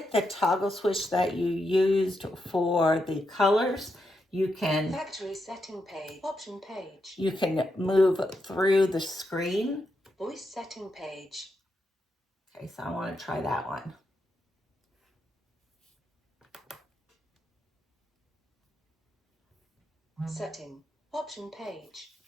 the toggle switch that you used for the colors, you can Factory setting page. Option page. you can move through the screen. Voice setting page. Okay, so I want to try that one. Setting. Option page.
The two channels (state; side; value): normal; both; correlation 0.83